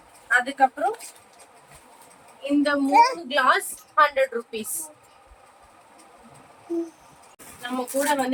அதுக்கப்புறம் இந்த 3 கிளாஸ் 100 rupees. நம்ம கூட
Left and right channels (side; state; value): both; identical; correlation 1.00